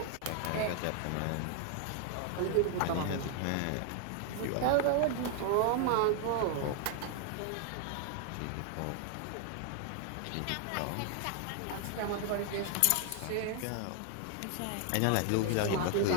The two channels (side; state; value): both; different; correlation 0.00